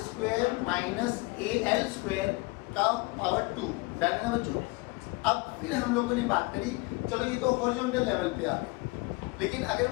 square minus al square का पावर 2। डन है बच्चों? अब फिर हम लोगों ने बात करी, चलो ये तो हॉरिजॉन्टल लेवल पे आ गए, लेकिन अगर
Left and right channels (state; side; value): quieter; right; 24.7 dB